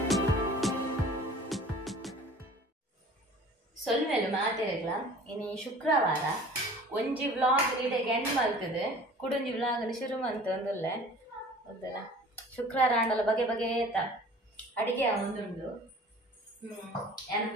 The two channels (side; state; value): both; normal; correlation 0.46